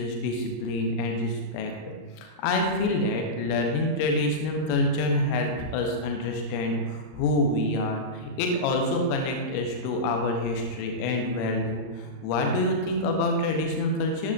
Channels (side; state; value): right; late; 39 ms